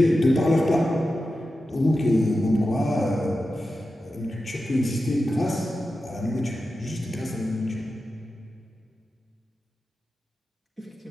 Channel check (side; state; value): both; normal; correlation 0.92